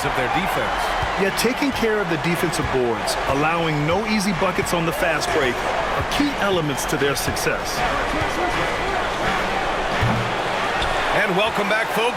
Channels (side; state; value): both; identical; correlation 1.00